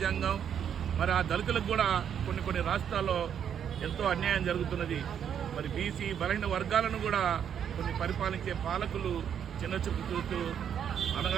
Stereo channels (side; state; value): left; quieter; 8.6 dB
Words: మరి ఆ దళితులకు కూడా కొన్ని రాష్ట్రాల్లో ఎంతో అన్యాయం జరుగుతున్నది. మరి బీసీ బలహీన వర్గాలను కూడా కొన్ని పరిపాలించే పాలకులు చిన్నచూపు చూస్తూ